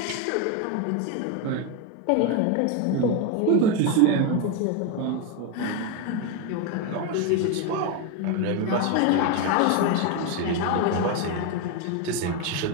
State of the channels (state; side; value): different; both; correlation 0.02